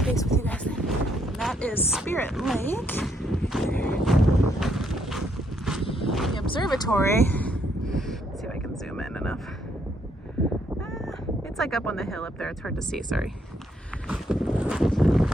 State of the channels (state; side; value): normal; both; correlation 0.73